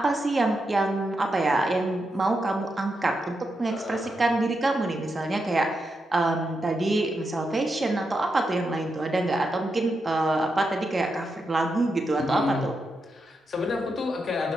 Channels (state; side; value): normal; both; correlation 0.85